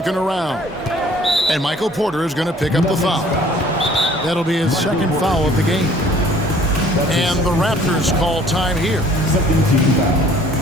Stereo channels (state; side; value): normal; both; correlation 0.54